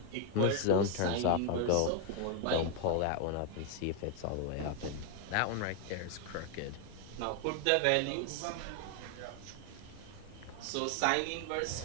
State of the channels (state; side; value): different; both; correlation 0.00